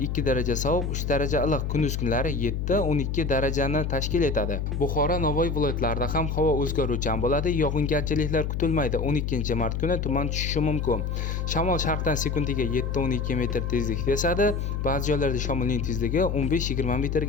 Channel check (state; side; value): noise; left; hum, 1 dB below the sound